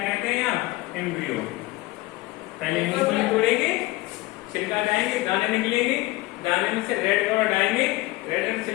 कहते हैं आप? एम्ब्रियो। पहले मूंगफली तोड़ेंगे, छिलका हटाएंगे, दाने निकलेंगे, दाने में से रेड कलर हटाएंगे, रेड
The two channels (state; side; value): quieter; right; 19.9 dB